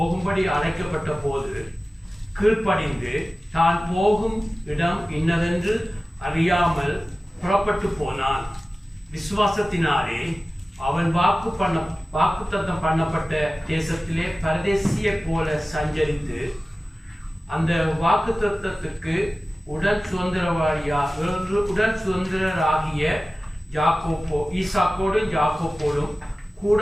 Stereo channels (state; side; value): normal; both; correlation 0.96